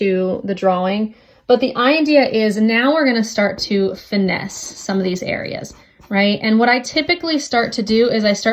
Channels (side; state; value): both; identical; correlation 1.00